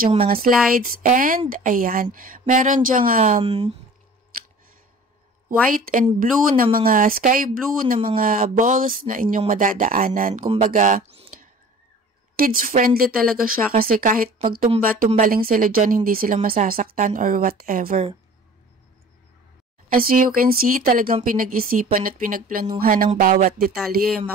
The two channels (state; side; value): normal; both; correlation 0.45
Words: dyang mga slides and, ayan, meron dyang white and blue na mga, sky blue na mga balls na inyong madadaanan. Kumbaga, kids-friendly talaga siya kasi kahit pagtumba-tumbaling sila dyan, hindi sila masasaktan or whatever. As you can see, talagang pinag-isipan at pinagplanuhan ng bawat detalye.